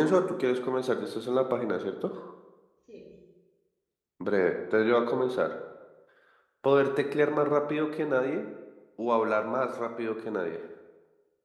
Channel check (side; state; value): both; identical; correlation 1.00